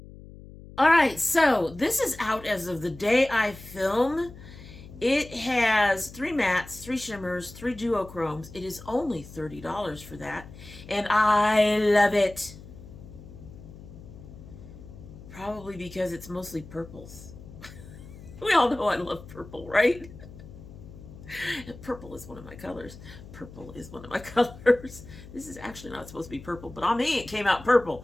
All right, so this is out as of the day I film. It has 3 mattes, 3 shimmers, 3 duochromes. It is only $30 for that, and I love it. Probably because it's mostly purples. We all know I love purple, right? Purple is one of my colors. Purple is one of my colors. This is actually not supposed to be purple, but on me it came out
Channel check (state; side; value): noise; left; hum, 17 dB below the sound